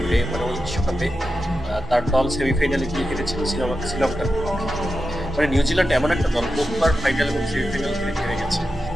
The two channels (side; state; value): both; normal; correlation 0.90